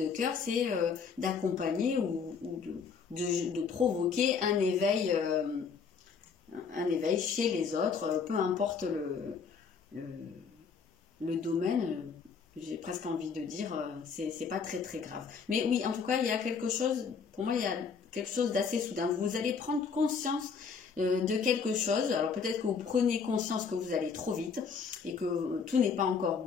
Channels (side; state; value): right; quieter; 5.8 dB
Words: cœur, c'est d'accompagner ou de provoquer un éveil chez les autres, peu importe le domaine. J'ai presque envie de dire, c'est pas très très grave. Mais oui, en tout cas, il y a quelque chose, pour moi, il y a quelque chose d'assez soudain. Vous allez prendre conscience de quelque chose. Alors peut-être que vous prenez conscience que vous allez trop vite et que tout n'est pas encore